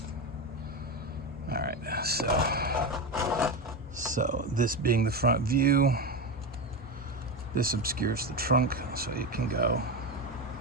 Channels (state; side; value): normal; both; correlation 0.17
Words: All right, so this being the front view, this obscures the trunk, so it can go.